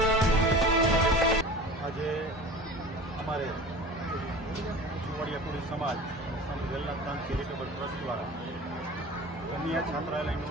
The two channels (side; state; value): both; normal; correlation 0.38